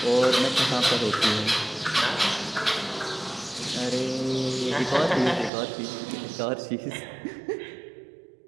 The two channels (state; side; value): drops out; left; at 5.5 s